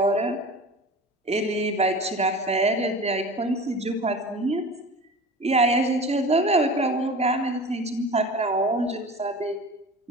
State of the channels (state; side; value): normal; both; correlation 0.36